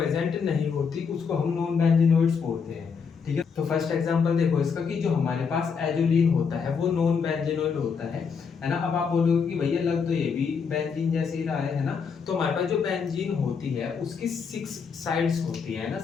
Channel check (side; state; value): right; quieter; 6.0 dB